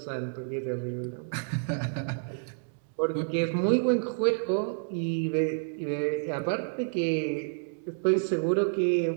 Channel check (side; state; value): left; silent; digital silence